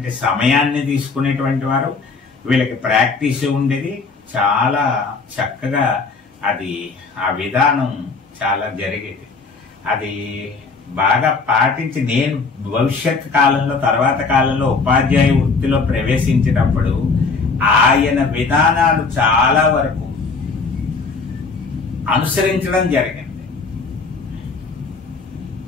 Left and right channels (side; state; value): right; quieter; 4.5 dB